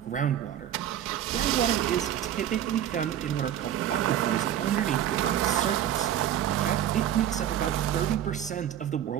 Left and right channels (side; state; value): left; quieter; 10.9 dB